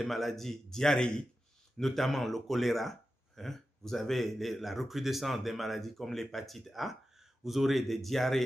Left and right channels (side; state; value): both; normal; correlation 0.92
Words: maladies diarrhéiques, notamment le choléra. Vous avez la recrudescence des maladies comme l'hépatite A. Vous aurez des